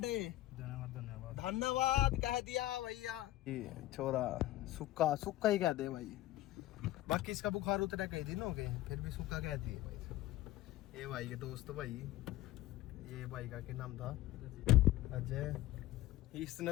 धन्यवाद धन्यवाद कह दिया भैया। ये छोरा सुक्का सुक्का ही कह दे भाई, बाकी इसका बुखार उतरा कई दिन हो गए फिर भी सुक्का कहती है भाई। ये भाई के दोस्त भाई, ये भाई का क्या नाम था, अजय। इसने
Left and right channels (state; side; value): quieter; right; 15.8 dB